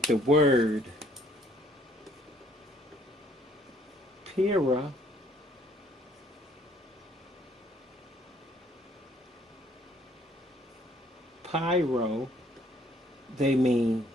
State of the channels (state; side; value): normal; both; correlation 0.63